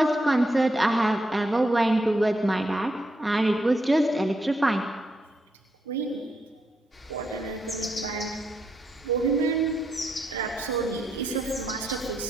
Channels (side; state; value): both; normal; correlation 0.80